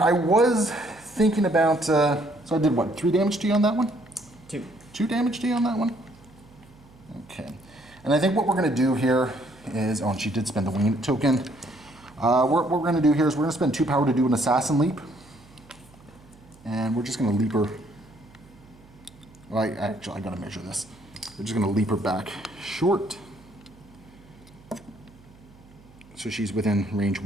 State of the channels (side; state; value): right; noise; hum, 25 dB below the sound